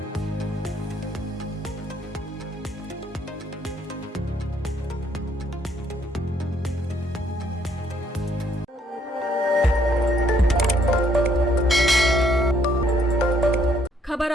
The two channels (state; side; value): normal; both; correlation 0.68